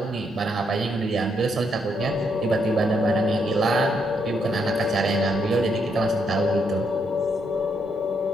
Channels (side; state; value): both; normal; correlation 0.76